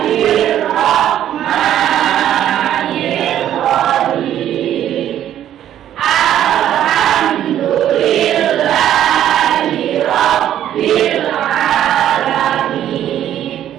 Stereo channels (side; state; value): left; quieter; 11.1 dB